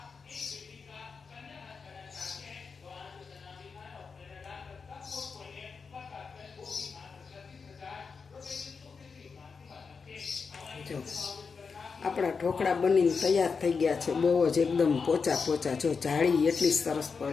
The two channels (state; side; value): quieter; right; 5.2 dB